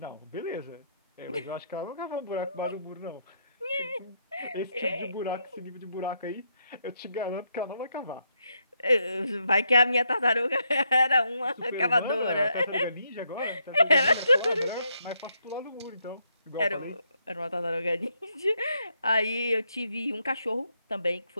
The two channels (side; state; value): both; inverted; correlation -0.77